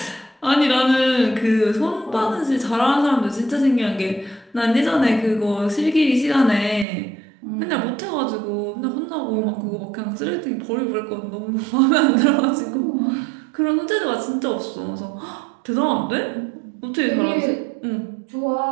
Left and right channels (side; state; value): left; drops out; at 6.9 s